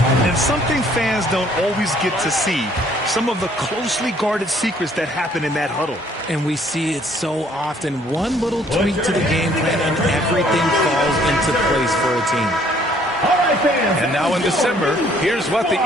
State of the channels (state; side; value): normal; both; correlation 0.62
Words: And something fans don't always get to see, some of the closely guarded secrets that happen in that huddle. And we see it so often. One little tweak to the game plan and everything falls into place for a team. And now in December, here's what the